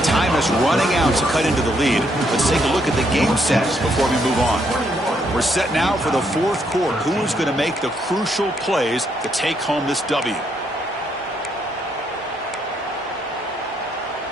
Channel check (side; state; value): both; normal; correlation 0.74